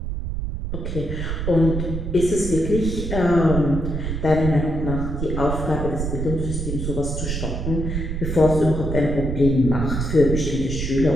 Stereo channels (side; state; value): right; noise; rumble, 3 dB below the sound